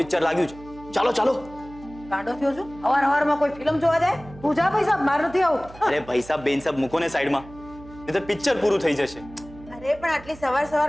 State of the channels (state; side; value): noise; right; hum, 19 dB below the sound